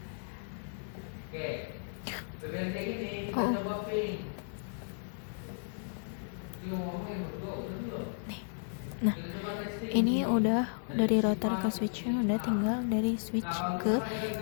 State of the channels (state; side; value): silent; right; 55 dB below the other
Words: Nah, ini udah dari router ke switchnya, udah tinggal dari switch ke